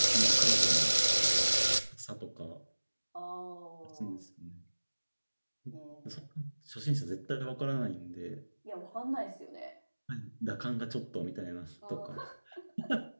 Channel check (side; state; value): both; inverted; correlation -1.00